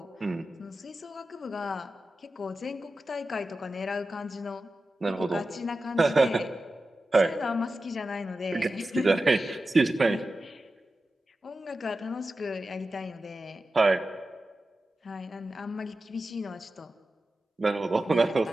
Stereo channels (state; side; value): normal; both; correlation 0.93